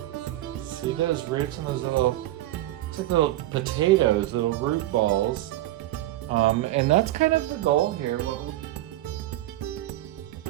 See those roots and those little, it's like little potatoes, little root balls. And that's kind of the goal here.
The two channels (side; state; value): left; quieter; 15.5 dB